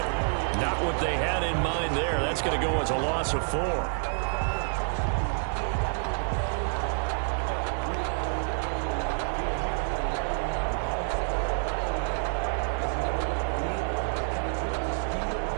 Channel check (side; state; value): left; silent; 59 dB below the other